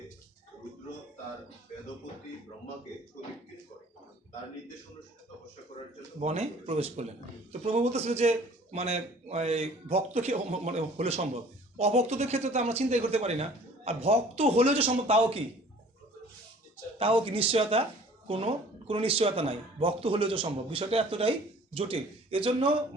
রুদ্র তার বেদপতি ব্রহ্মাকে প্রদীক্ষিত করে তার নির্দেশ অনুসারে তপস্যা করার জন্য বনে প্রবেশ করলেন। তো প্রভু বলতেছিল যে মানে ভক্ত কি মানে হলে সম্ভব, অভক্তদের ক্ষেত্রে তো আমরা চিন্তাই করতে পারি না। আর ভক্ত হলেও যে সম্ভব তাও কি নিশ্চয়তা, কোনো নিশ্চয়তা নাই। ভক্ত হলেও যে সম্ভব, বিষয়টা এতটাই জটিল। এজন্য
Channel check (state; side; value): normal; both; correlation 0.51